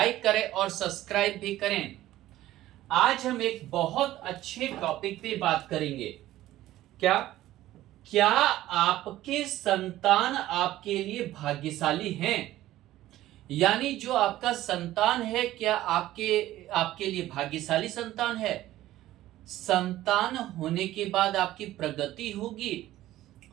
करें और सब्सक्राइब भी करें। आज हम एक बहुत अच्छे टॉपिक पे बात करेंगे। क्या क्या आपके संतान आपके लिए भाग्यशाली हैं? यानी जो आपका संतान है, क्या आपके लिए भाग्यशाली संतान है? संतान होने के बाद आपकी प्रगति होगी,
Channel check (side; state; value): left; quieter; 14.9 dB